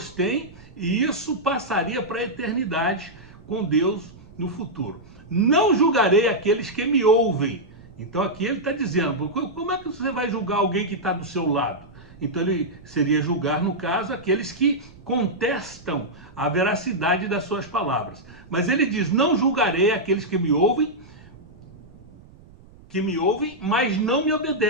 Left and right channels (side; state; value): right; noise; rumble, 23 dB below the sound